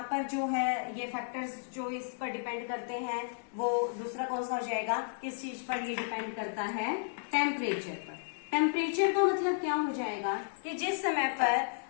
पर जो है ये फैक्टर्स जो इस पर डिपेंड करते हैं, वो दूसरा कौन सा हो जाएगा, किस चीज पर ये डिपेंड करता है, टेम्परेचर पर। टेम्परेचर का मतलब क्या हो जाएगा कि जिस समय पर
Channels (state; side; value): silent; right; 56 dB below the other